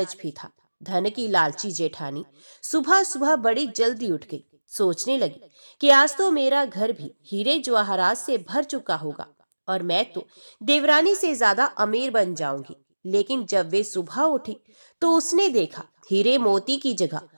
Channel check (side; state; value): both; inverted; correlation -1.00